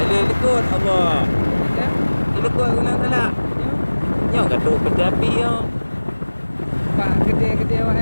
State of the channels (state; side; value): inverted; both; correlation -1.00